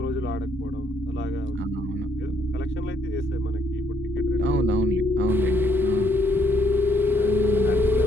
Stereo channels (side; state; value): both; normal; correlation 0.69